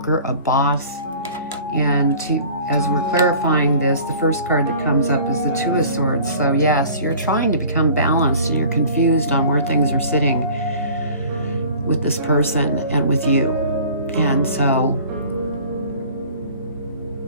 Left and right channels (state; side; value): inverted; both; correlation -0.46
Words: a boss. And as we're clarifying this, the first card that comes up is the Two of Swords. So yes, you're trying to become balanced and you're confused on where things are sitting with this person and with you. And so